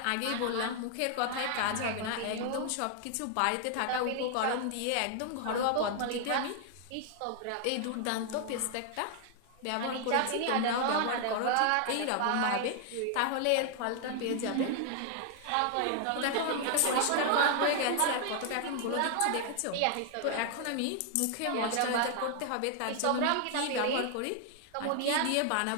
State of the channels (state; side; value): different; both; correlation 0.00